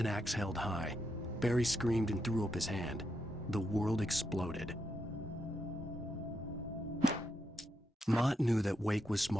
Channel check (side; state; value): both; normal; correlation 0.82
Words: axe held high. Barry screamed and threw up his hand. The world exploded. Mott knew that Wake was